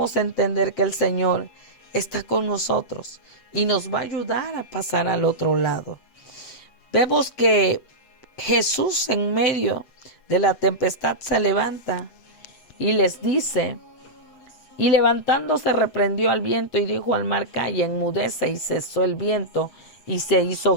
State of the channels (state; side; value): late; right; 8.0 ms